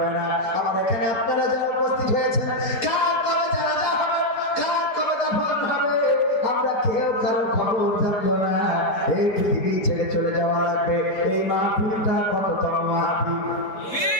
না আমার এখানে আপনারা যারা উপস্থিত হয়েছেন কার কবে জানাজা হবে কার কবে দাফন হবে আমরা কেউ কারো খবর জানবো না এই পৃথিবী ছেড়ে চলে যাওয়া লাগবে এই মাহফিল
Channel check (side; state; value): right; late; 4.3 ms